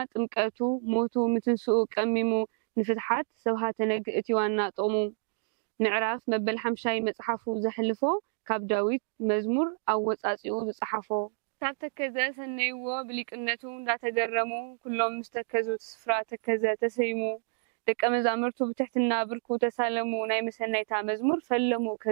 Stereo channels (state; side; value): silent; left; digital silence